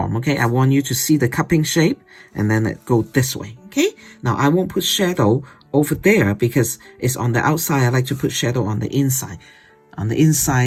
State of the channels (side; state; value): both; identical; correlation 1.00